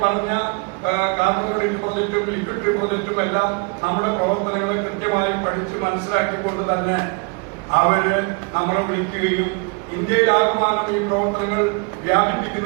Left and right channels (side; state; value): left; quieter; 32.5 dB